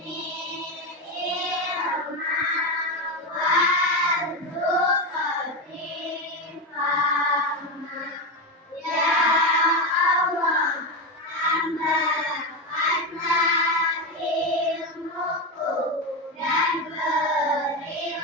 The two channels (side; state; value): both; normal; correlation 0.14